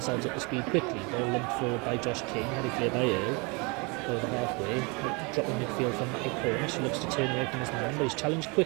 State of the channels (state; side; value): quieter; left; 30.0 dB